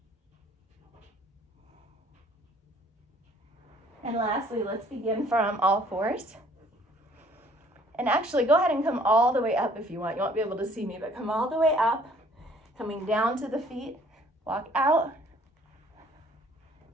And lastly, let's begin from all fours. And actually, go ahead and come all the way up if you want. You won't be able to see me, but come all the way up. Coming down to the feet. Walk out.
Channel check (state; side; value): normal; both; correlation 0.58